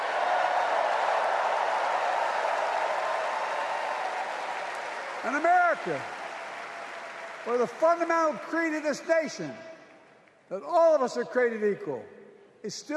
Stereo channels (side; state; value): both; identical; correlation 1.00